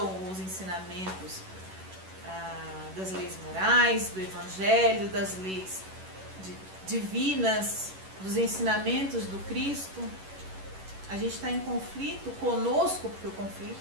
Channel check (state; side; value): late; left; 11 ms